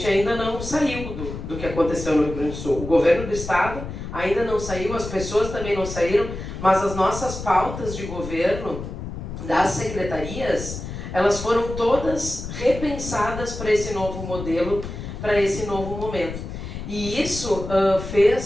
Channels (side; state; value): left; noise; rumble, 8 dB below the sound